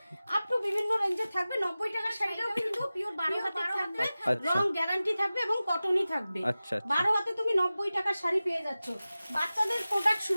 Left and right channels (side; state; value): both; inverted; correlation -0.96